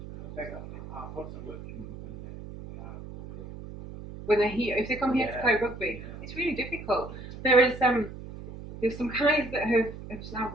very often. When they're here, if they come here to play rugby, it's really difficult. There's some guys that have now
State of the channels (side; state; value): right; noise; hum, 12 dB below the sound